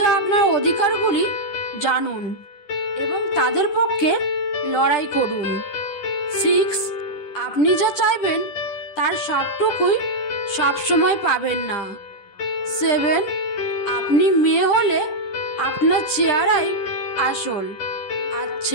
আপনার অধিকারগুলি জানুন এবং তাদের পক্ষে লড়াই করুন। 6. আপনি যা চাইবেন তার সবটুকুই সবসময় পাবেন না। 7. আপনি মেয়ে হলে আপনার চেহারাই আসল, আর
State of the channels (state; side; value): late; right; 10 ms